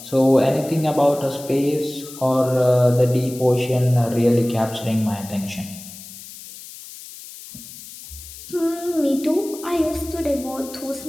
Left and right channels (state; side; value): noise; left; hiss, 15 dB below the sound